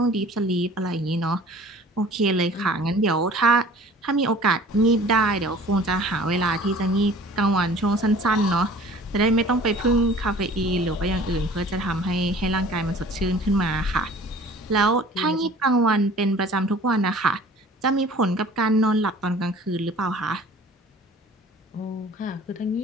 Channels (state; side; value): normal; both; correlation 0.48